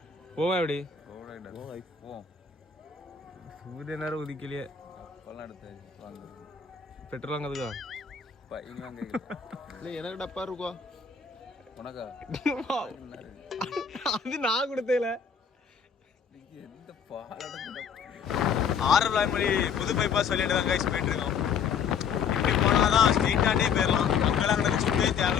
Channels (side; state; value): right; quieter; 6.7 dB